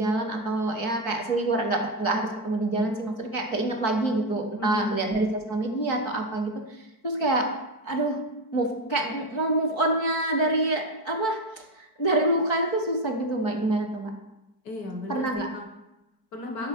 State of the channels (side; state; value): right; late; 4.5 ms